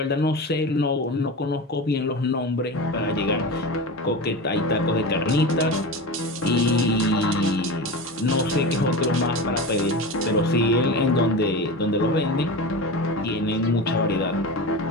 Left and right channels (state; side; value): normal; both; correlation 0.27